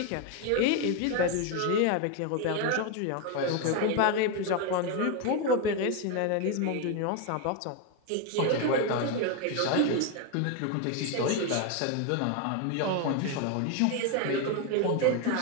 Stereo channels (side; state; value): both; different; correlation 0.02